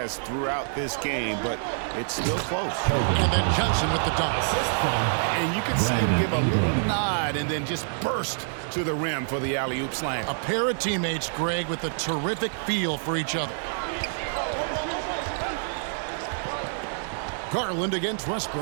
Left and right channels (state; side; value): silent; left; digital silence